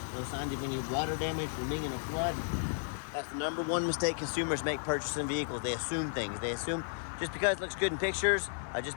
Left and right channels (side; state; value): right; silent; digital silence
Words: No signs of any water damage from being in a flood. That's the number 1 mistake consumers make purchasing vehicles. They assume things. They assume just because it looks good in pictures,